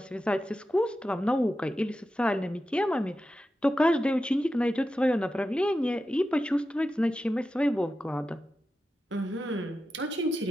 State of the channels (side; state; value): both; normal; correlation 0.91